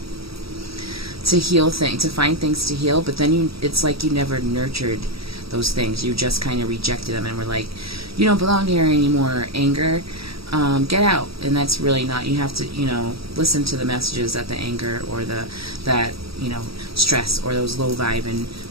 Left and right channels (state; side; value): late; left; 0.76 ms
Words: to heal things, to find things to heal, but then it's like you never nurtured those things. You just kind of rejected them and were like, you don't belong here anymore, anger. Get out. And that's really not, you have to, listen to the messages that the anger or that stress or those low vibe and